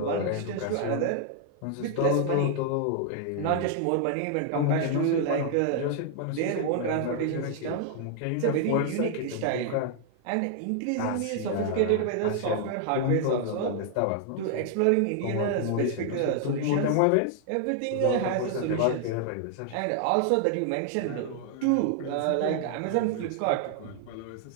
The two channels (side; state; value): both; different; correlation 0.00